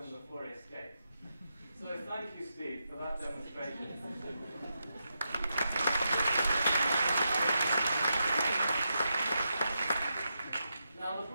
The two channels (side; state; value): both; inverted; correlation -0.85